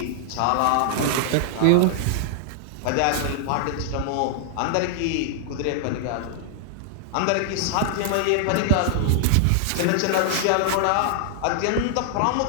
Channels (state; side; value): different; both; correlation 0.00